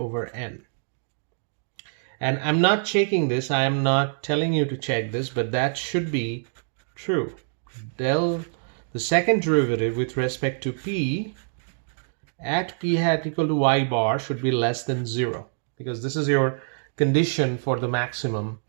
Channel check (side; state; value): left; silent; digital silence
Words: n. And I'm not checking this, I am not telling you to check this, but that should be true. The second derivative with respect to p at p hat equal to y bar should be less than 0, because this is your condition for the maximum